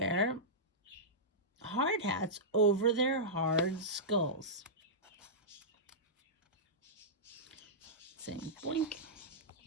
hard hats over their hard skulls. Saying boink.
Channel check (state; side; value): normal; both; correlation -0.14